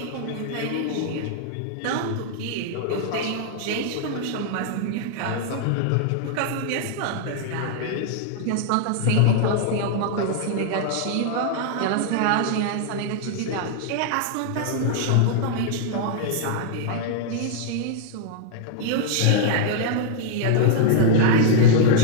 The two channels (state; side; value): different; both; correlation -0.01